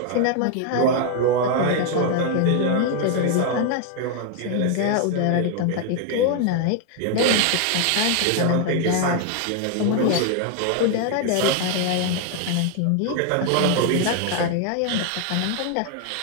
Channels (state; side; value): different; both; correlation 0.00